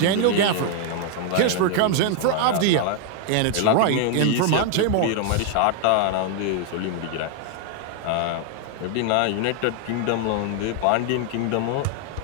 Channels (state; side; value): different; both; correlation 0.00